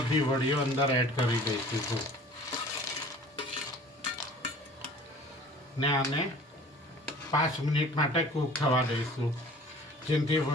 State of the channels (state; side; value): normal; both; correlation 0.47